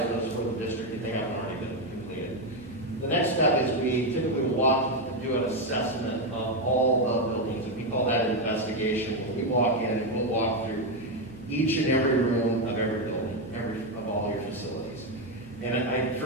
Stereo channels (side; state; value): right; noise; hum, 23 dB below the sound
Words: those for the district if they haven't already been completed. The next step is we typically walk and do an assessment of all the buildings, and we call that an investigation. When we walk in, and we'll walk through each and every room of every building, of all your facilities. And